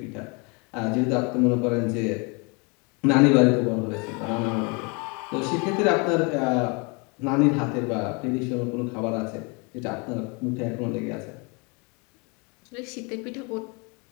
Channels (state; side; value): quieter; right; 31.4 dB